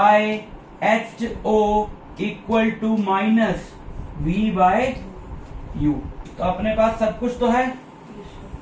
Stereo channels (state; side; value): identical; both; correlation 1.00